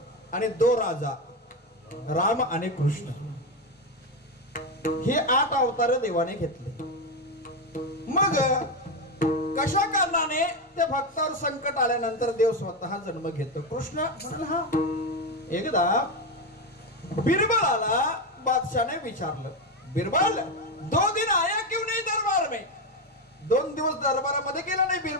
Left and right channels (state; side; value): normal; both; correlation 0.11